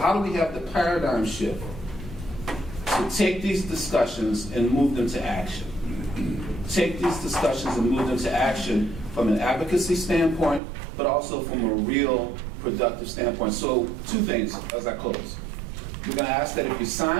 do we have the paradigm shift to take these discussions and move them to action? Take these discussions and move them to action from an advocacy standpoint, but also from a real productive standpoint. So 2 things as I close. We're going to ask that if you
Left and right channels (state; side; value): drops out; left; at 10.6 s